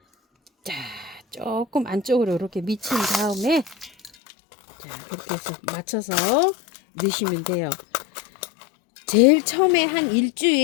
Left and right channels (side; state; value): right; drops out; at 4.1 s